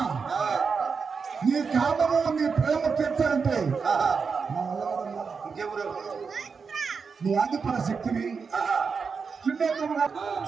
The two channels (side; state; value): left; quieter; 5.4 dB